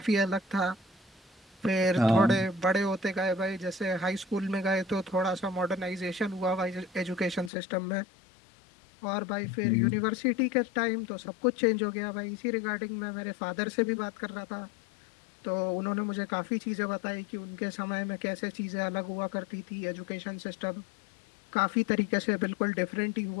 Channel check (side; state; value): right; drops out; at 7.5 s